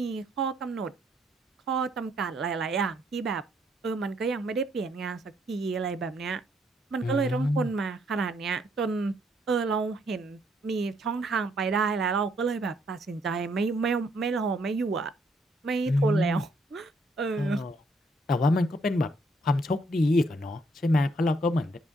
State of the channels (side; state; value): both; normal; correlation 0.70